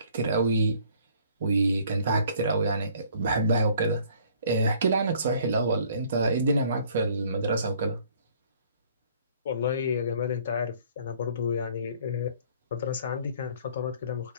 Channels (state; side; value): inverted; both; correlation -0.57